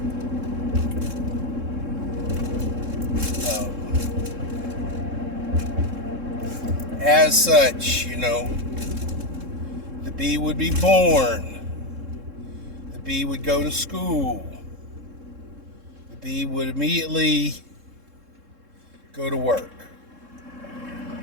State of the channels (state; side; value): late; left; 3.7 ms